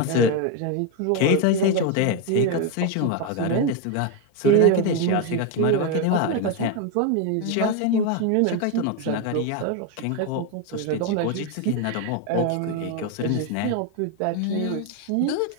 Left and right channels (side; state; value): both; different; correlation 0.02